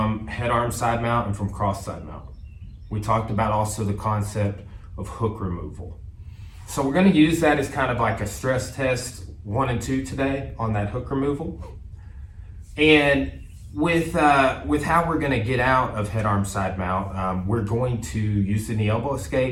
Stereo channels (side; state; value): both; identical; correlation 1.00